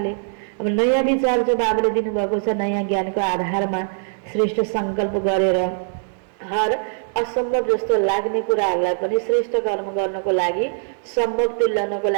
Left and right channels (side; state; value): left; silent; digital silence